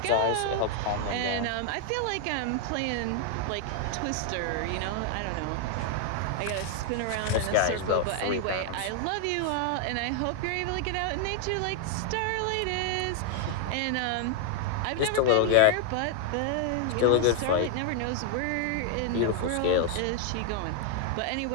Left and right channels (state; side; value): different; both; correlation 0.00